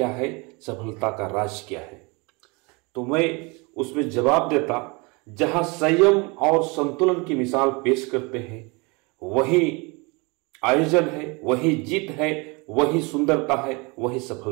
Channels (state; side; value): quieter; left; 28.3 dB